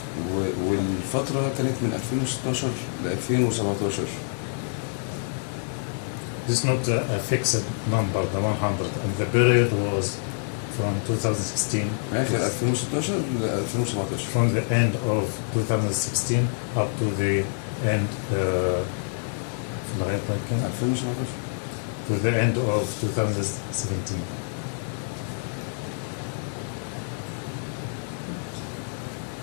والفترة كانت من 2016 ل 2017. This is not a fixed number, the 100, and the period was from 2016. آخر 2016 ل 2017. From the end of 2016 up to the end في لغاية كام؟ 2017. To the end of 2017.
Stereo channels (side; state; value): right; silent; 57 dB below the other